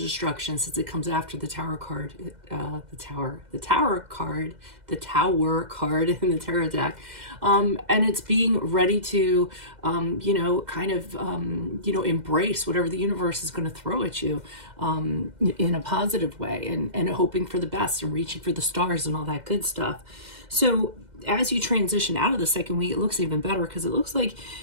since it comes after the Tower card, the Tower card in the Tarot deck, and it's being ready to, embrace whatever the universe is going to throw at you, in a positive way, and hoping for the best and reaching for the stars and all that good stuff. So as you transition out of the second week, it looks even better, because it looks like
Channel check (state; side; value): late; left; 2.1 ms